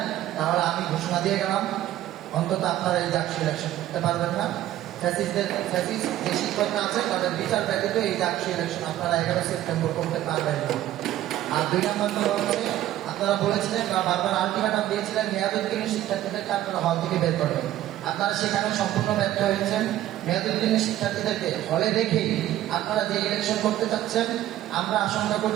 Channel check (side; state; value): left; quieter; 13.5 dB